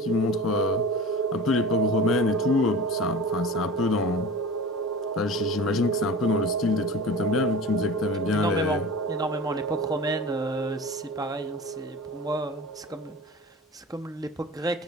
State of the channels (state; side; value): normal; both; correlation 0.35